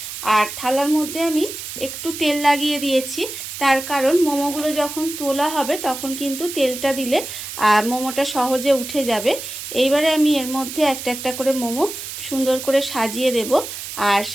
আর থালার মধ্যে আমি একটু তেল লাগিয়ে দিয়েছি, তার কারণ মোমোগুলো যখন তোলা হবে তখন কিন্তু তেলটা দিলে মোমোটা সহজে উঠে যাবে। এইবারে আমি এর মধ্যে একটা একটা করে মোমো সুন্দর করে সাজিয়ে দেব। আর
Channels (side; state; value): right; noise; hiss, 9 dB below the sound